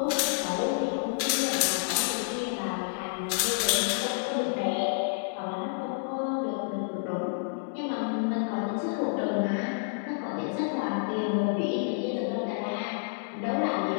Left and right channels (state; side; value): silent; right; digital silence